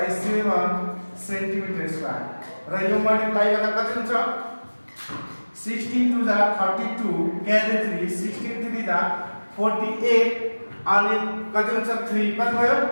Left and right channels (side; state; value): both; inverted; correlation -1.00